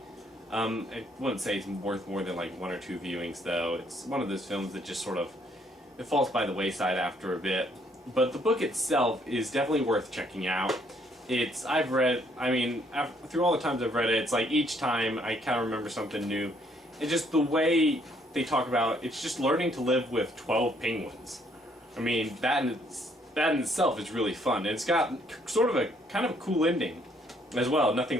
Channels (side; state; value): both; normal; correlation 0.67